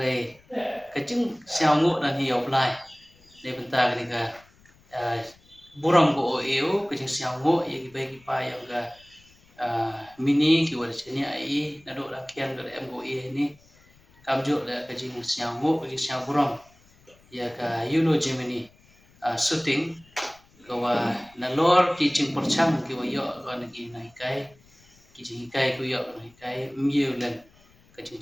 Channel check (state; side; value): noise; left; rumble, 29 dB below the sound